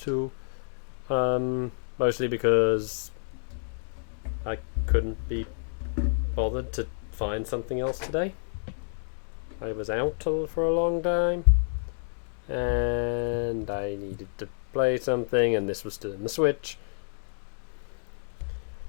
Mostly because I couldn't be bothered to find something else today. I was out for a long time. And I needed to play something, and this was still in the Switch.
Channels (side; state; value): right; silent; 59 dB below the other